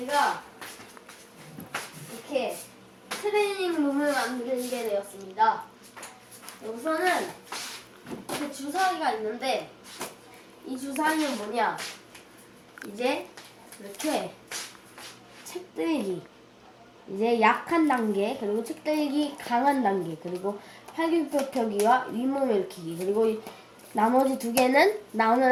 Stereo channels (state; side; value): identical; both; correlation 1.00